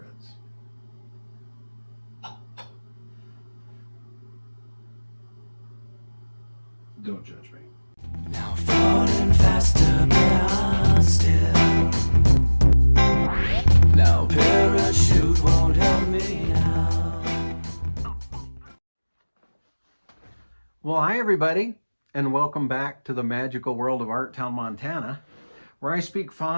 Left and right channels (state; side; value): inverted; both; correlation -1.00